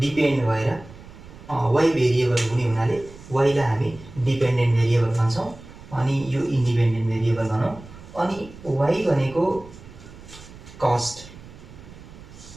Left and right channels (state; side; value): noise; right; rumble, 18 dB below the sound